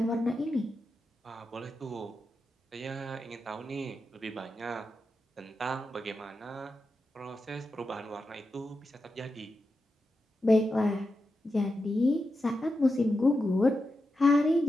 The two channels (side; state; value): both; normal; correlation 0.89